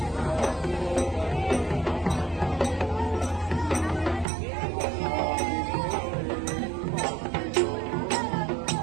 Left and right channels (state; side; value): drops out; left; at 4.2 s